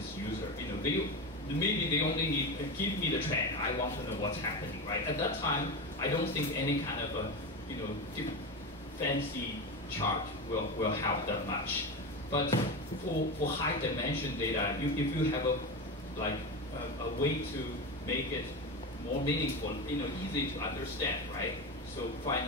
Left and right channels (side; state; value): both; normal; correlation 0.20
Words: user. Maybe they only need give me the trend. I want to know what's happening, right? At that time, I don't think any kind of a fancy chart will help that much. But for high dimension data, if you have a way to make it more meaningful, easy to understand, right? So